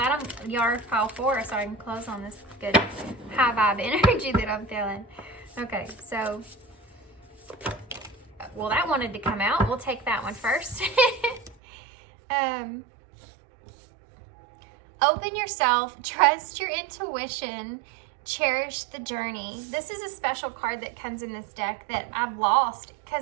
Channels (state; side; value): drops out; left; at 11.6 s